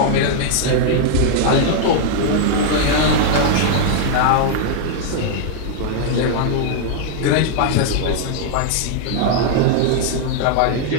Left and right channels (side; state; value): both; different; correlation -0.01